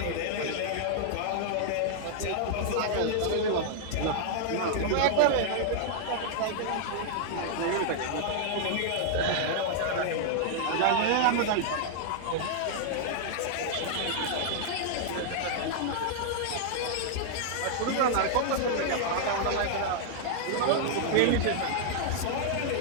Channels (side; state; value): both; different; correlation -0.01